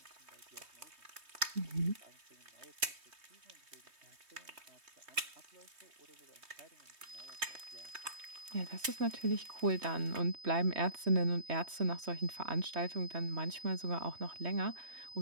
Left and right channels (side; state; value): left; late; 3.2 ms